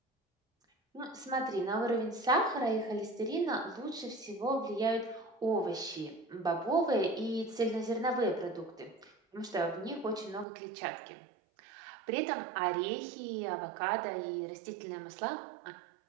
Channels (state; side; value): drops out; left; at 10.5 s